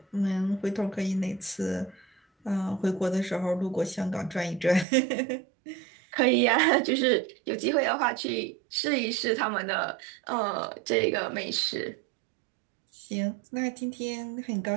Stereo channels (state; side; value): drops out; left; at 4.9 s